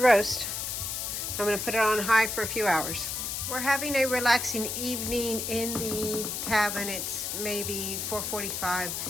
I'm going to put it on high for a few hours. We're having a relaxing evening in the cabin. It's maybe 4:45.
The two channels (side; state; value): left; noise; hiss, 3 dB below the sound